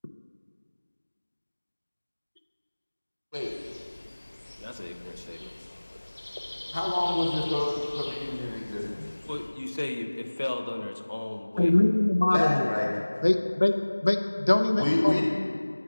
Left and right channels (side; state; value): both; inverted; correlation -1.00